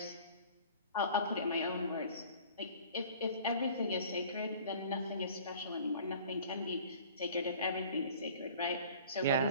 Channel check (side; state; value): both; inverted; correlation -0.47